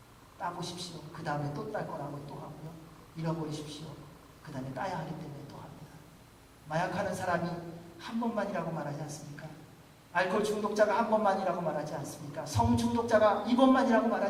따보십시오. 그 다음에 또 딸 거라고 또 하고요. 잃어버리십시오. 그 다음에 따야 하기 때문에 또 합니다. 마약하는 사람이 한 번만이라고 말하지 않습니까? 알코올 중독자가 한 번만이라고 말하지 않습니까? 성 중독자가 2번만이라고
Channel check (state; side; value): identical; both; correlation 1.00